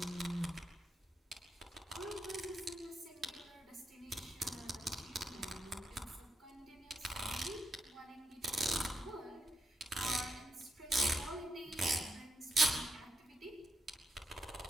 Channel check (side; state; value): both; normal; correlation 0.81